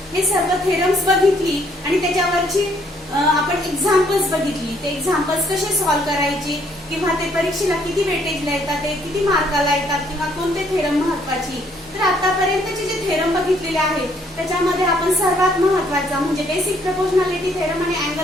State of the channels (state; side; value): normal; both; correlation 0.66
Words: हे सर्व थेरम्स बघितली आणि त्याच्यावरची आपण एक्झाम्पल्स बघितली. ते एक्झाम्पल्स कसे सॉल्व्ह करायचे किंवा ते परीक्षेला किती वेटेजला येतात, ते किती मार्काला येतात किंवा कोणते थेरम महत्वाची. तर आतापर्यंतचे जे थेरम बघितलेले आहेत त्याच्यामध्ये आपण सर्वात महत्वाचा म्हणजे बेसिक प्रपोर्शनॅलिटी थेरम आणि